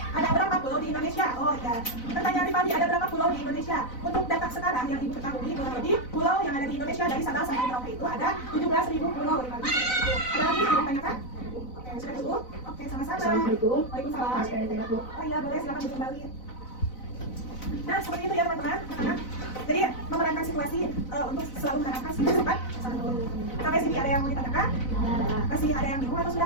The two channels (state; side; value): late; right; 4.0 ms